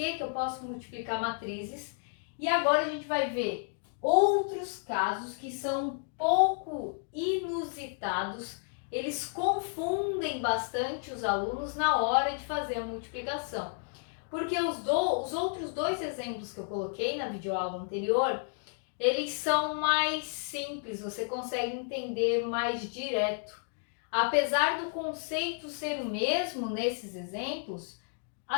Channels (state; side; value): silent; right; 57 dB below the other